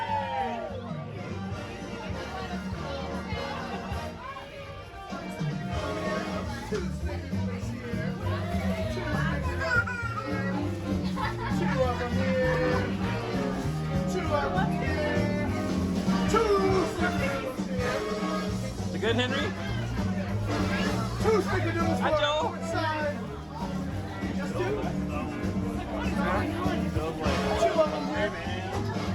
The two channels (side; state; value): both; identical; correlation 1.00